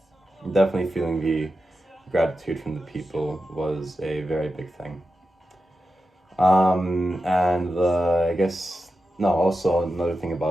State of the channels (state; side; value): normal; both; correlation 0.90